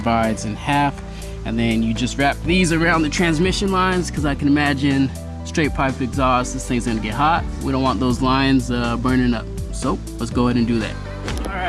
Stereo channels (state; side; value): identical; both; correlation 1.00